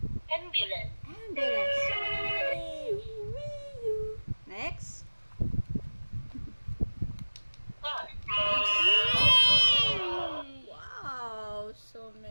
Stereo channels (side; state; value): both; inverted; correlation -1.00